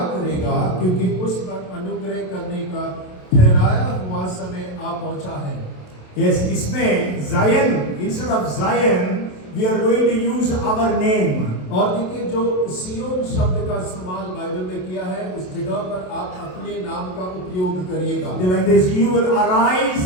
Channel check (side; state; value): right; late; 27 ms